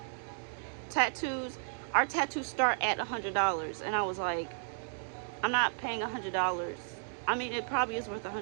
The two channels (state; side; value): silent; left; digital silence